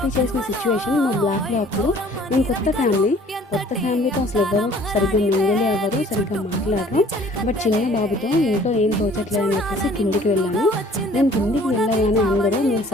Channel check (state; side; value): normal; both; correlation 0.53